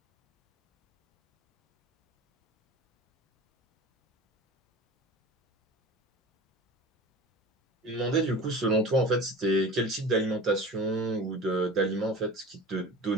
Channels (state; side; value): normal; both; correlation 0.36